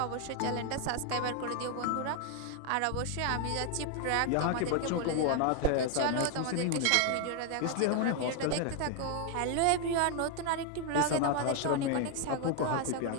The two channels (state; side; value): different; both; correlation 0.00